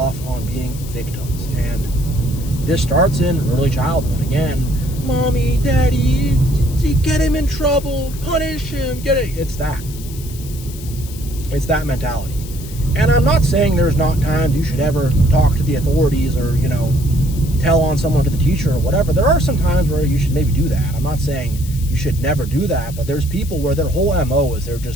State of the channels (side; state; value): left; noise; hiss, 16 dB below the sound